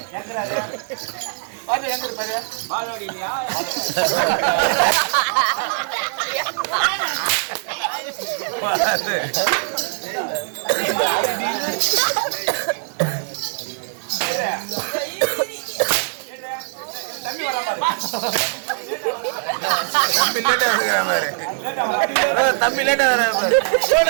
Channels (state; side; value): silent; left; 56 dB below the other